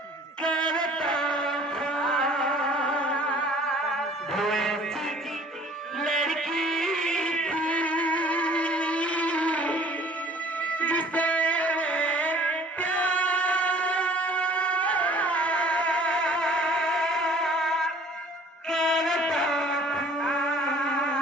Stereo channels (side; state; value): both; normal; correlation 0.52